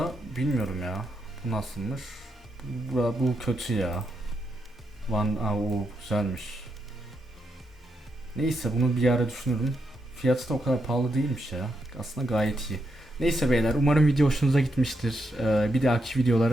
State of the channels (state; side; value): normal; both; correlation 0.82